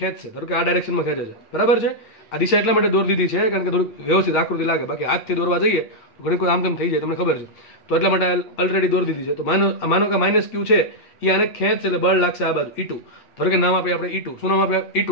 ધારો કે આ ડાયરેક્શનમાં ખેંચે છે. બરાબર છે. આ દિશા એટલા માટે દોરી દીધી છે કારણ કે થોડુંક વ્યવસ્થિત આકૃતિ લાગે. બાકી હાથથી દોરવા જઈએ તો ઘણી કોઈ આમ તેમ થઈ જાય, તમને ખબર છે. તો એટલા માટે ઓલરેડી દોરી દીધી છે. તો માનો કે માઇનસ ક્યુ છે એ આને ખેંચશે એટલે બળ લાગશે આ બાજુ E2. ધારો કે નામ આપીએ આપણે E2. શું નામ આપીએ? E2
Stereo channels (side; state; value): right; late; 8.6 ms